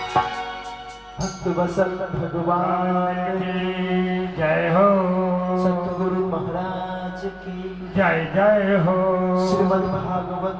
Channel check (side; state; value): both; identical; correlation 1.00